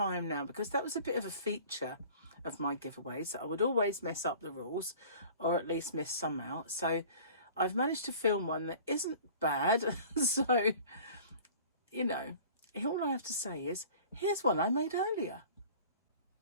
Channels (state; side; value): inverted; both; correlation -0.45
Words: now, because that was a bit of a feature of my giveaways, that I would always mess up the rules, or at least miss some out. So I've managed to film one that isn't bad. So, you know, all I have to say is, here's one I made earlier.